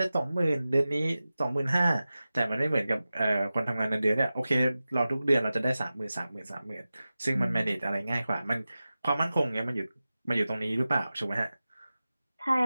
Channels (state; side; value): inverted; both; correlation -0.95